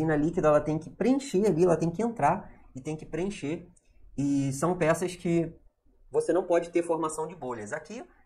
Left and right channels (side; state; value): both; identical; correlation 1.00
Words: líquida ela tem que preencher ali, ela tem que entrar e tem que preencher. E são peças que você não pode ter formação de bolhas. Aqui